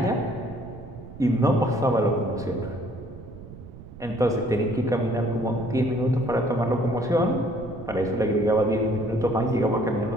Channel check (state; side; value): noise; right; rumble, 16 dB below the sound